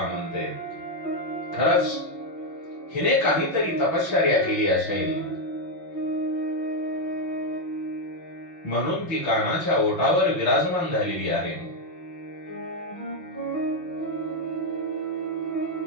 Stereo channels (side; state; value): right; late; 5.9 ms